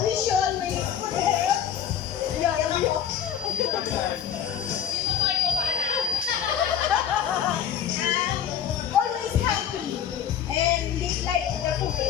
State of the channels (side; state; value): right; quieter; 9.0 dB